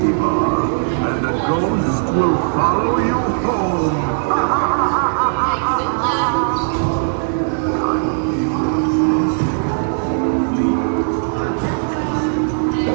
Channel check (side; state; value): left; silent; digital silence